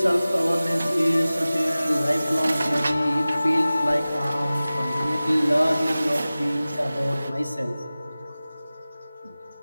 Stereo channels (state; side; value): inverted; both; correlation -0.97